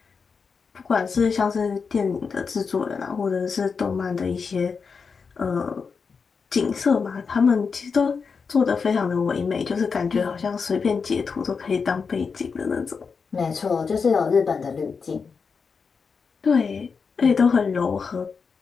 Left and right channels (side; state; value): right; quieter; 5.4 dB